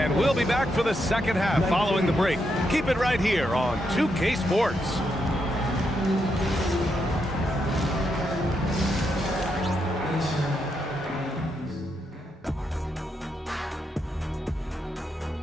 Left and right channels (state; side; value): normal; both; correlation 0.81